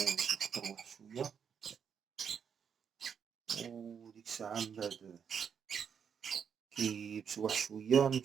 باش يقطروا واحد شوية، وديك الساعة من بعد كييبسو واحد شوية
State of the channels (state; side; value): quieter; left; 7.2 dB